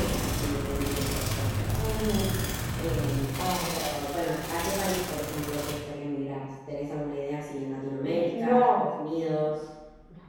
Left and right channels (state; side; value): identical; both; correlation 1.00